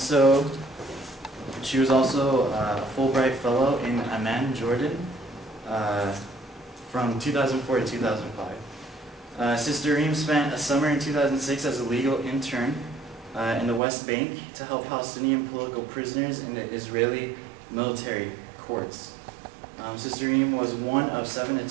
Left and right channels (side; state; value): left; drops out; at 13.8 s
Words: She was also a Fulbright Fellow in Amman, Jordan, from 2004 to 2005. Sister Reem spent a summer in 2006 as a legal intern in the West Bank to help Palestinian political prisoners in the Israeli military courts. Sister Reem was one of 7